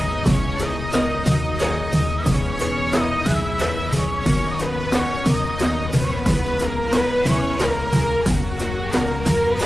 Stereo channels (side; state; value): left; noise; rumble, 9 dB below the sound